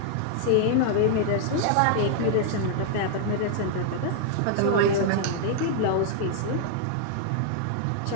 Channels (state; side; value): different; both; correlation 0.00